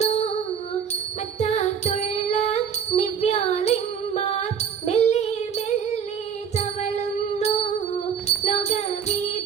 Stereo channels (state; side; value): quieter; left; 7.2 dB